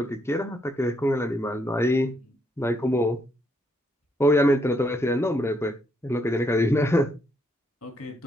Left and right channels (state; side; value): normal; both; correlation 0.75